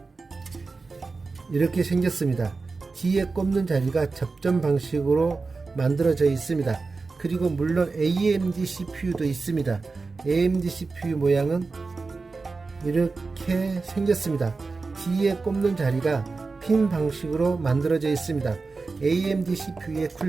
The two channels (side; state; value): left; quieter; 4.1 dB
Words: 이렇게 생겼습니다. 뒤에 꼽는 자리가 접점 방식으로 만들어져 있습니다. 그리고 물론 AMD CPU도 있습니다. AMD CPU 모양은 이렇게 생겼습니다. 뒤에 꼽는 자리가 핀 방식으로 만들어져 있습니다. AMD CPU의